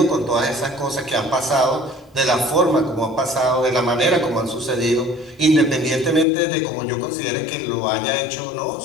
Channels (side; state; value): right; drops out; at 6.2 s